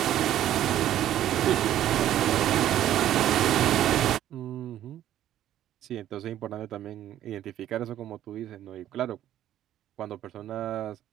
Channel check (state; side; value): quieter; left; 12.0 dB